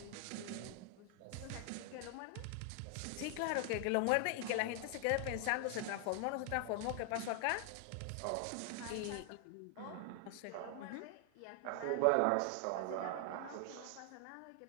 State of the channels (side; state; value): both; different; correlation 0.00